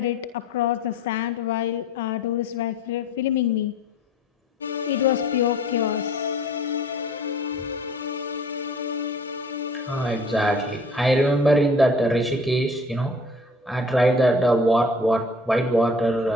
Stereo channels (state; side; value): normal; both; correlation 0.49